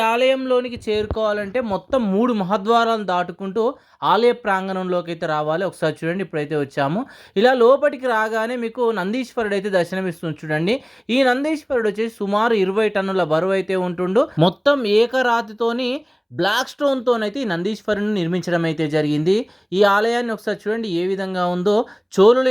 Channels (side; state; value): both; identical; correlation 1.00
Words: ఆలయంలోనికి చేరుకోవాలంటే మొత్తం 3 మహద్వారాలను దాటుకుంటూ ఆలయ ప్రాంగణంలోకి అయితే రావాలి. ఒకసారి చూడండి, ఇప్పుడైతే వచ్చాము. ఇలా లోపలికి రాగానే మీకు నందీశ్వరుడు అయితే దర్శనమిస్తుంది చూడండి. ఈ నందీశ్వరుడు వచ్చేసి సుమారు 20 టన్నుల బరువు అయితే ఉంటుండు. మొత్తం ఏకరాతితోని బ్లాక్ స్టోన్‌తోనైతే ఈ నందీశ్వరుడిని నిర్మించడం అయితే జరిగింది. ఈ ఆలయాన్ని ఒకసారి చూడండి ఏ విధంగా ఉందో. చోళుల